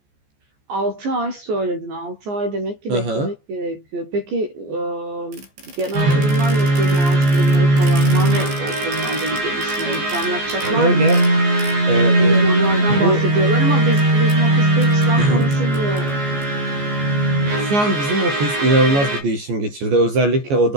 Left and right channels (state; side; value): late; left; 14 ms